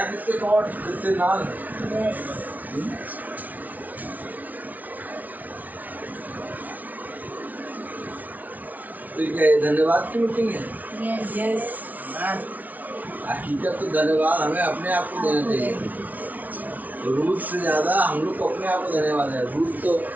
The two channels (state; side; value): late; left; 0.076 ms